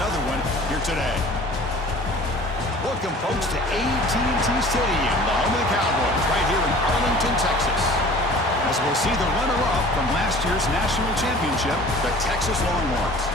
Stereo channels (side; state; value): both; normal; correlation 0.46